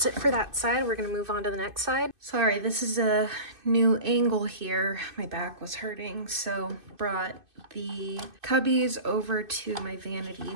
it for that side. We're gonna move on to the next side. So Sorry, this is a new angle here. My back was hurting, so brought the cubbies over to my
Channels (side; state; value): left; late; 2.6 ms